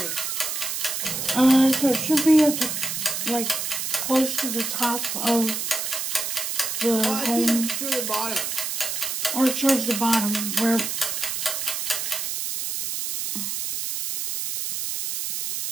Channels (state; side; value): noise; right; hiss, 3 dB below the sound